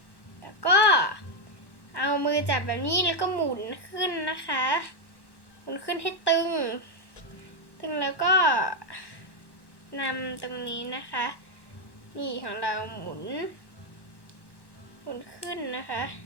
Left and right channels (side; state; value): right; late; 1.1 ms